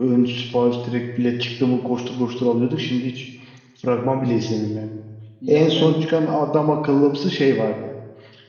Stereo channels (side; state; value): both; identical; correlation 1.00